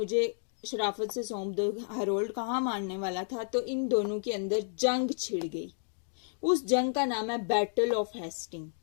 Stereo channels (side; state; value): right; silent; digital silence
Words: शराफत से सौंप दो। हैरोल्ड कहाँ मानने वाला था? तो इन दोनों के अंदर जंग छिड़ गई। उस जंग का नाम है बैटल ऑफ हेस्टिंग,